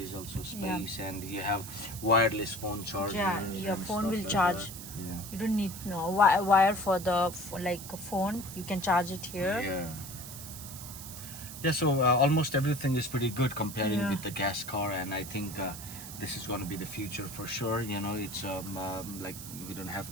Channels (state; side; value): noise; right; hiss, 11 dB below the sound